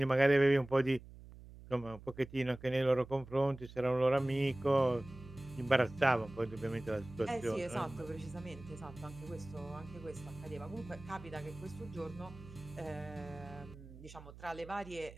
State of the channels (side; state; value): right; noise; hum, 17 dB below the sound